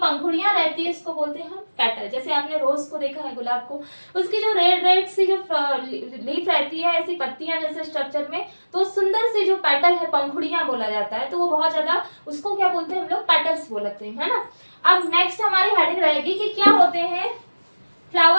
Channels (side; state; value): both; inverted; correlation -1.00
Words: रहती है इसको बोलते हैं हम पेटल। जैसे आपने रोज को देखा है, गुलाब को, उसकी जो रेड रेड सी जो लीफ रहती है, ऐसी पत्तियां जैसे स्ट्रक्चर में, तो सुंदर सी जो पेटल है, पंखुड़ियां बोला जाता है, तो वो बहुत ज्यादा, उसको क्या बोलते हैं हम लोग पेटल्स बोलते हैं, है ना। अब नेक्स्ट हमारी हेडिंग रहेगी कि क्या होते हैं